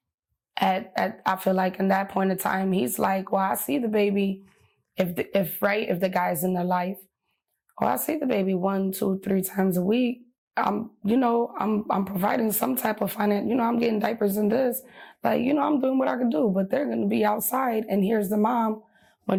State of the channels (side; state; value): both; identical; correlation 1.00